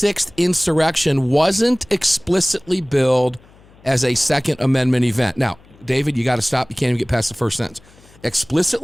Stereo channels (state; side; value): noise; left; hum, 27 dB below the sound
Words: insurrection wasn't explicitly billed as a Second Amendment event. Now, David, you got to stop. You can't even get past the first sentence.